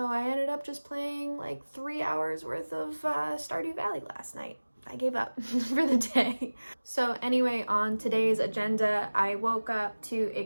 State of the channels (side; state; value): both; inverted; correlation -1.00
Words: I ended up just playing like 3 hours worth of Stardew Valley last night. I gave up for the day. So anyway, on today's agenda, I woke up to a